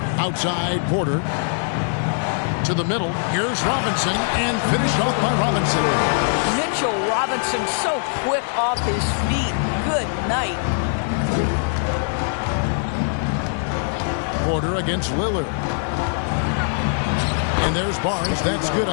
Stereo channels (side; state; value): right; silent; digital silence